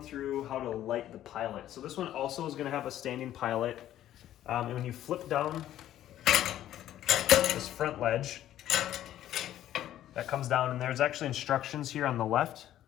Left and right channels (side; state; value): right; quieter; 12.4 dB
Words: through how to light the pilot. So this one also is gonna have a standing pilot. And when you flip down this front ledge, that comes down, and there's actually instructions here on the left.